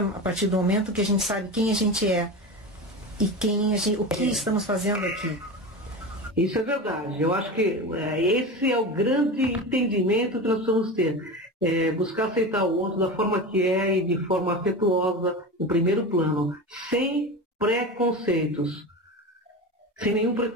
a partir do momento que a gente sabe quem a gente é e o que estamos fazendo aqui. Isso é verdade. Eu acho que esse é o grande entendimento que nós precisamos ter. Buscar aceitar o outro da forma que é e de forma afetuosa, no primeiro plano, sem preconceitos. Sem nenhum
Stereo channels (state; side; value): normal; both; correlation 0.26